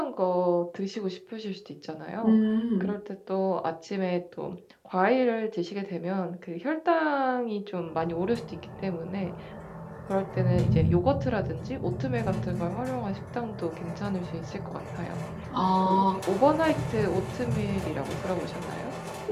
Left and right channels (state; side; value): identical; both; correlation 1.00